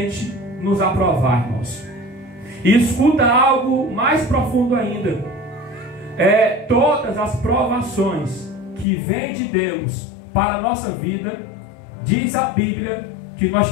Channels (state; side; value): drops out; right; at 8.8 s